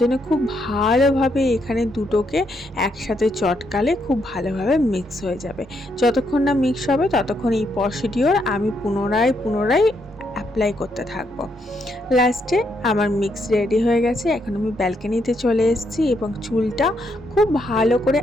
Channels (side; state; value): both; normal; correlation 0.77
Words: খুব ভালোভাবে এখানে দুটোকে একসাথে চটকালে খুব ভালোভাবে মিক্স হয়ে যাবে। যতক্ষণ না মিক্স হবে ততক্ষণ এই প্রসিডিওর আমি পুনরায় অ্যাপ্লাই করতে থাকবো। লাস্টে আমার মিক্স রেডি হয়ে গেছে। এখন আমি ব্যালকনিতে চলে এসেছি এবং চুলটা খুব ভালো করে